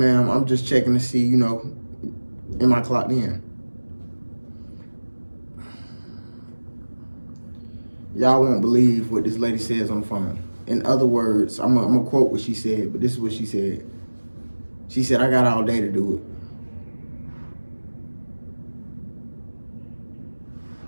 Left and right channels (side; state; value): both; inverted; correlation -1.00